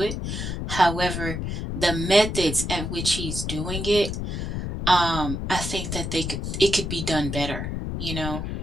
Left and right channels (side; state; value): left; noise; rumble, 4 dB below the sound